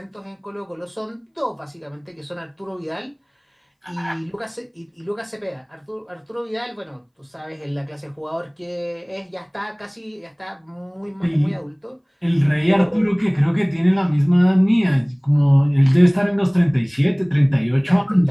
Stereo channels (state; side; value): identical; both; correlation 1.00